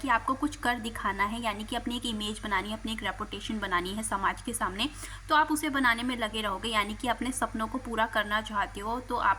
आपको कुछ कर दिखाना है, यानी कि अपनी एक इमेज बनानी है, अपनी एक रेपुटेशन बनानी है समाज के सामने। तो आप उसे बनाने में लगे रहोगे, यानी कि अपने सपनों को पूरा करना चाहते हो तो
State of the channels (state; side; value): identical; both; correlation 1.00